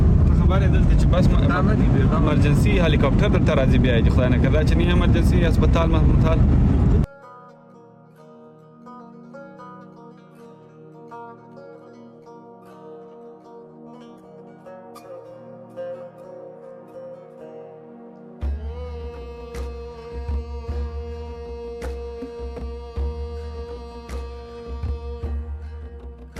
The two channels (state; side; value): identical; both; correlation 1.00